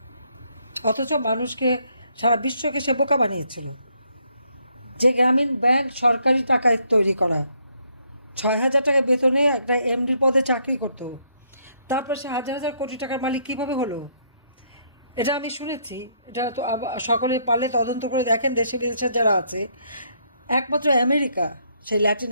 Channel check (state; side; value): inverted; both; correlation -0.71